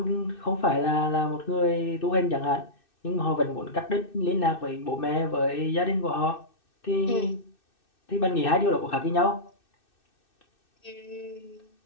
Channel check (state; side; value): late; right; 2.6 ms